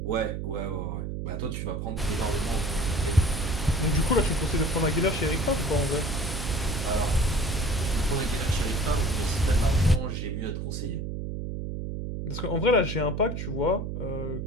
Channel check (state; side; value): noise; right; hum, 4 dB below the sound